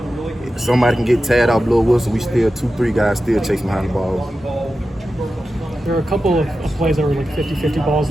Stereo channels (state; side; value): normal; both; correlation 0.92